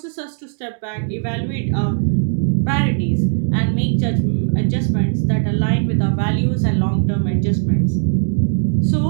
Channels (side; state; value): left; silent; digital silence